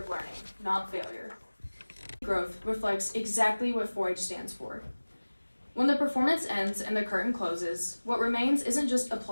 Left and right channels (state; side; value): inverted; both; correlation -1.00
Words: learning, not failure. Growth reflects exactly what 4-H stands for. When the performance ends and the curtain closes, what remains isn't just